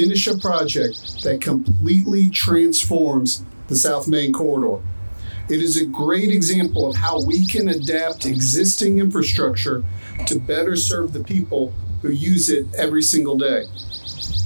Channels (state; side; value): inverted; both; correlation -1.00